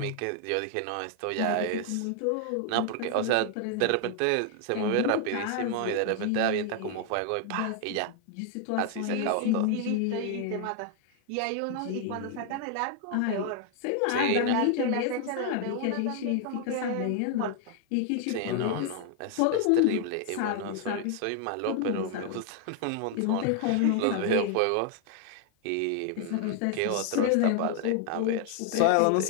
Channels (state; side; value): different; both; correlation 0.00